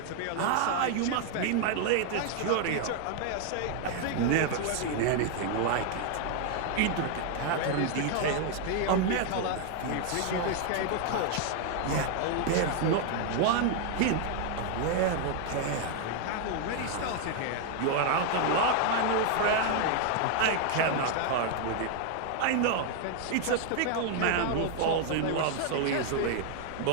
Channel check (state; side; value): different; both; correlation 0.00